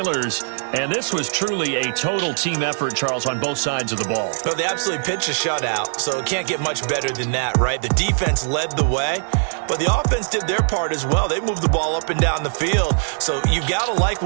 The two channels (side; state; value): left; silent; 65 dB below the other